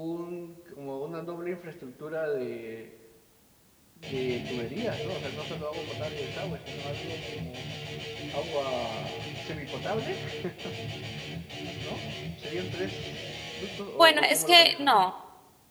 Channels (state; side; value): identical; both; correlation 1.00